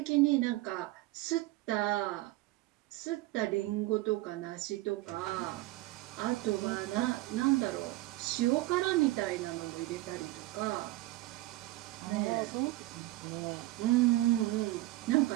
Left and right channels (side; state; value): left; quieter; 18.3 dB